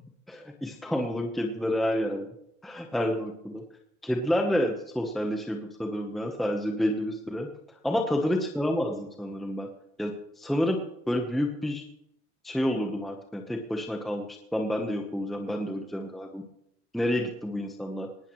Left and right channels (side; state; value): both; normal; correlation 0.84